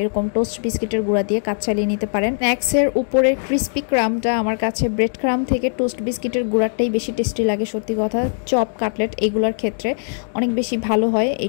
টোস্ট বিস্কিটের গুঁড়া দিয়ে কাজ চালিয়ে নিতে পারেন। স্ন্যাক্সের উপরের ক্রিস্পি ক্রাম্বটা আমার কাছে ব্রেড ক্রাম্ব থেকে টোস্ট বিস্কিটের গুঁড়াটাই বেশি টেস্টি লাগে। সত্যি কথা, চপ কাটলেট এগুলোর ক্ষেত্রে অনেক বেশি ভালো হয় এই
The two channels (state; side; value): silent; right; digital silence